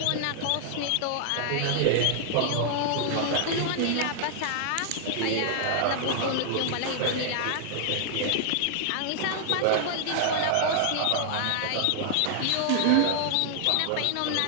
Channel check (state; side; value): different; both; correlation -0.01